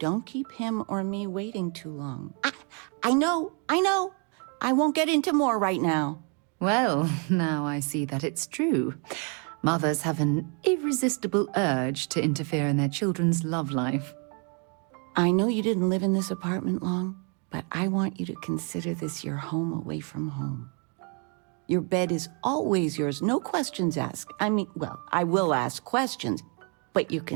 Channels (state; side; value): quieter; left; 37.5 dB